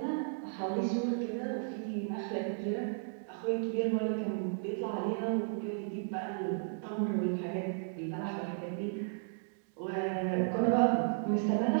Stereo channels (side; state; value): left; silent; digital silence